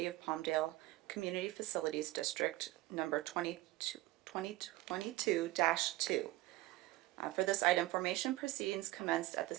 of Palmdale Community Facilities District number 2022-2. For this item, formation proceedings commenced at the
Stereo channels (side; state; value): left; quieter; 17.9 dB